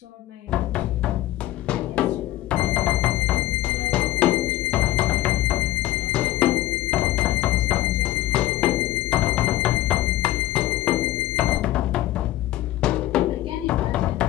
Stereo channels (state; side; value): quieter; right; 15.2 dB